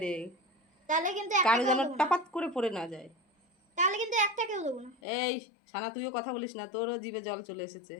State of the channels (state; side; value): drops out; right; at 5.0 s